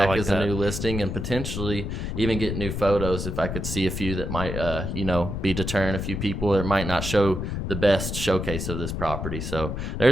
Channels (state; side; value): noise; left; rumble, 4 dB below the sound